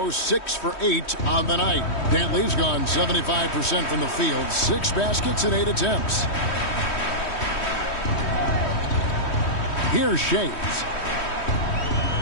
6 for 8 on the night. Dantley's gone 75% from the field. 6 baskets in 8 attempts. Here's Shays.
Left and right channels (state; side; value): late; right; 3.1 ms